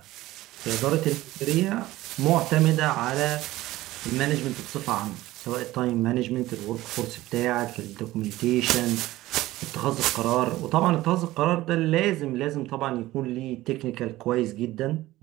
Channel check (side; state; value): left; quieter; 16.8 dB